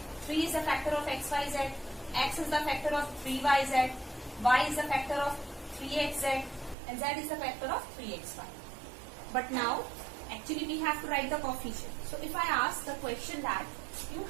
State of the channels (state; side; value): drops out; left; at 6.8 s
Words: 3 is the factor of x, y, z. X is the factor of 3y, z. Y is the factor of 3x, z. And z is the factor of 3x, y. But now, actually we have to write the coefficient. So if I ask the question that you